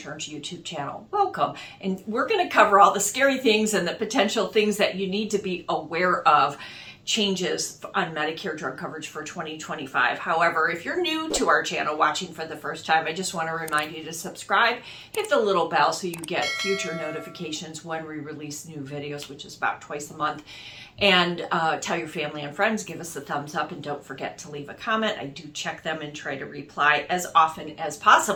YouTube channel. Welcome. And we're going to cover all the scary things and the potential things that you need to be aware of. Changes on Medicare drug coverage for 2025. However, if you're new to our channel watching for the first time, I just want to remind you to subscribe, hit the little bell so you get future notifications when we release new videos, which is about twice a month. And tell your family and friends, give us a thumbs up, and don't forget to leave a comment. I do check them and try to reply as often as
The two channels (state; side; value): identical; both; correlation 1.00